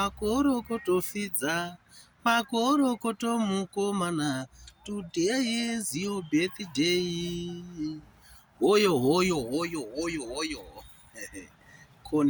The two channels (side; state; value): both; identical; correlation 1.00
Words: pizza. Makorokoto mukomana. Today is your birthday. Hoyo, hoyo, hoyo, hoyo, hoyo.